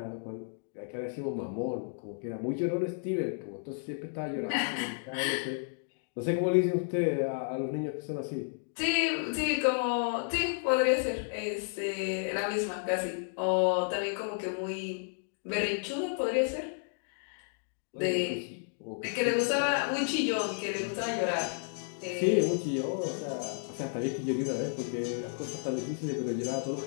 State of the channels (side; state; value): right; silent; digital silence